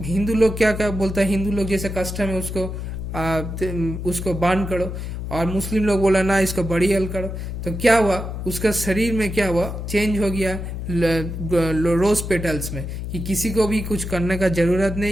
हिंदू लोग क्या क्या बोलता है, हिंदू लोग जैसे कस्टम है उसको बर्न करो, और मुस्लिम लोग बोला ना इसको बरियल करो। तो क्या हुआ, उसका शरीर में क्या हुआ, चेंज हो गया रोज पेटल्स में, कि किसी को भी कुछ करने का जरूरत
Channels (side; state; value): left; noise; hum, 6 dB below the sound